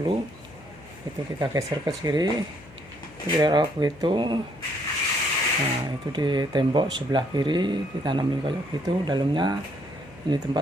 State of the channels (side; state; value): left; noise; hum, 22 dB below the sound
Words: Itu kita geser ke kiri, kira-kira begitu. Nah, itu di tembok sebelah kiri ditanamin kayak gitu. Dalamnya ini